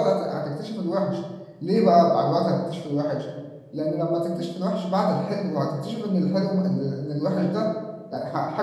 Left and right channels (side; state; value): both; identical; correlation 1.00